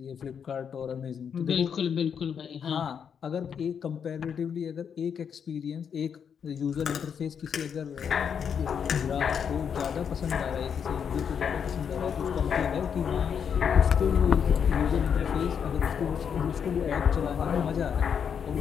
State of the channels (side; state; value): right; quieter; 7.4 dB